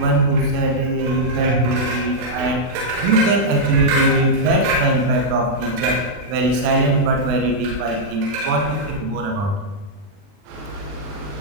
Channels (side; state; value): left; late; 40 ms